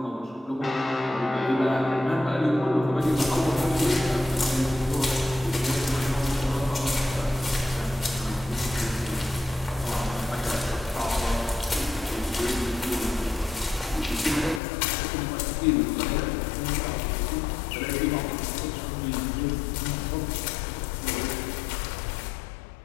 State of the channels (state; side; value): drops out; right; at 14.6 s